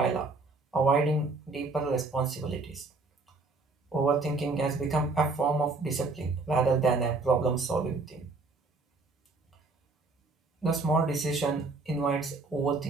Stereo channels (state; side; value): quieter; left; 3.6 dB